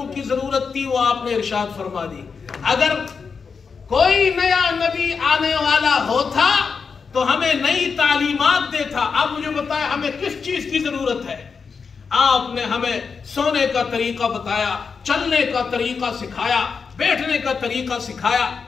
کی ضرورت تھی وہ آپ نے ارشاد فرما دی. اگر کوئی نیا نبی آنے والا ہوتا تو ہمیں نئی تعلیمات دیتا. آپ مجھے بتائیں ہمیں کس چیز کی ضرورت ہے؟ آپ نے ہمیں سونے کا طریقہ بتایا, چلنے کا طریقہ سکھایا, بیٹھنے کا طریقہ سکھایا.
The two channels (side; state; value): right; quieter; 5.5 dB